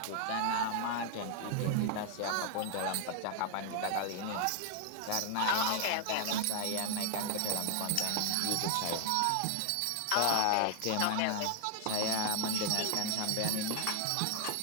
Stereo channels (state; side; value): different; both; correlation 0.00